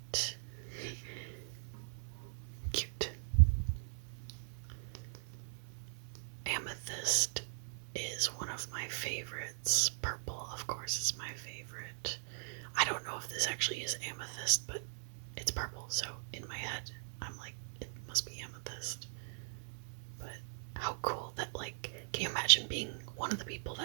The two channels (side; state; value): left; silent; 51 dB below the other